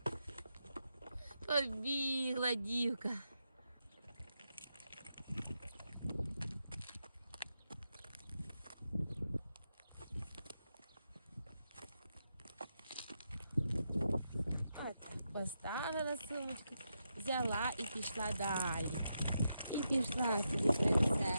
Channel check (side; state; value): both; inverted; correlation -0.85